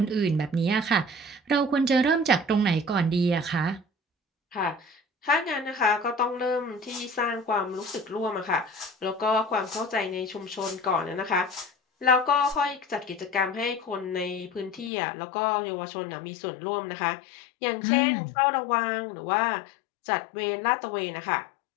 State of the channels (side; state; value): right; drops out; at 14.9 s